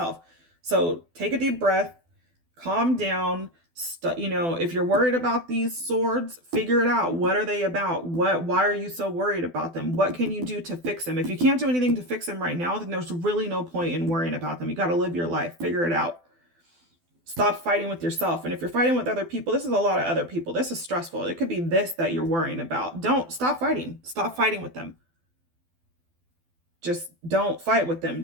So take a deep breath, calm down. If you're worried about these swords, figure it out. What are they about? Why are you so worried about them? What can you do to fix them? If you can't do anything to fix them right now, then there's really no point in worrying about them. You got to live your life. Figure it out. Stop fighting with yourself. And if you're fighting with other people, this is a lot of other people. This is stressful. It could be this that you're worrying about. Don't stop fighting. Stop fighting with them. Just don't fight with them.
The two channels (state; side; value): late; left; 12 ms